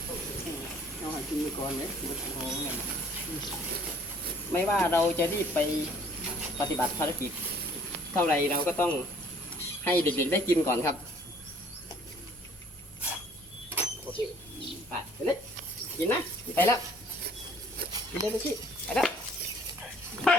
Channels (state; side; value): normal; both; correlation 0.58